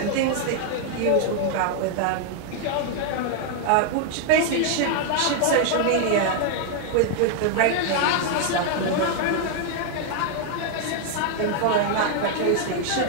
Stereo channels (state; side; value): different; both; correlation 0.00